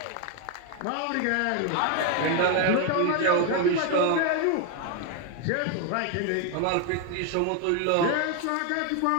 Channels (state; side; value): different; both; correlation 0.01